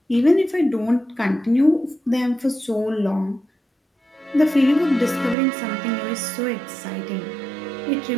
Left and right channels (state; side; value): drops out; left; at 5.4 s